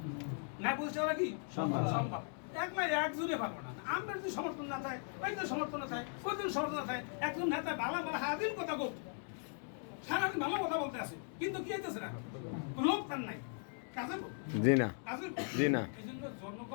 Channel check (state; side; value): silent; right; 52 dB below the other